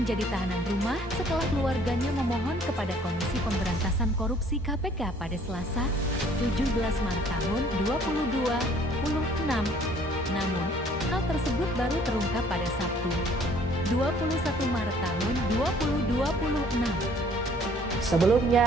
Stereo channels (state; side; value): normal; both; correlation 0.58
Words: tahanan rumah setelah keluarganya memohon kepada Komisi Pemberantasan Korupsi KPK pada Selasa, 17 Maret tahun 2026. Namun, hal tersebut baru terungkap pada Sabtu, 21 Maret tahun 2026.